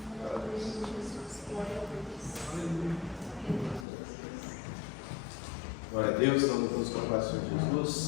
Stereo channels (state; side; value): drops out; right; at 3.9 s